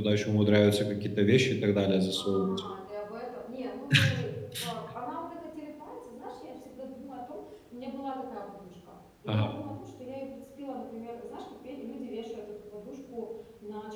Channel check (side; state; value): both; identical; correlation 1.00